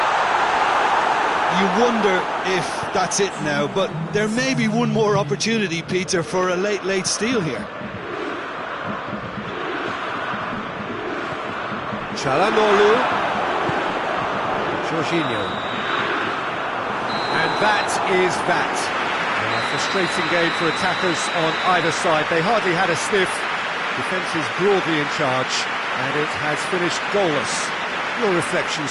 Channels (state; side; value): identical; both; correlation 1.00